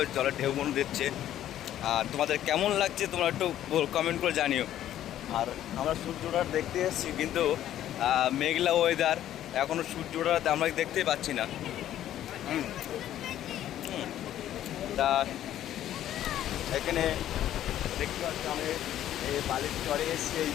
জলের ঢেউগুলো দিচ্ছে। আর তোমাদের কেমন লাগছে তোমরা একটু কমেন্ট করে জানিও। আর আমরা সূর্যটা দেখতে এসেছি, কিন্তু মেঘলা ওয়েদার, এখনও সূর্যটা আমরা দেখতেই পাচ্ছি না। তা এখানে দেখতে পাচ্ছি আমি এই বালির চরে এসেছি, এই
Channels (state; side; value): quieter; right; 12.0 dB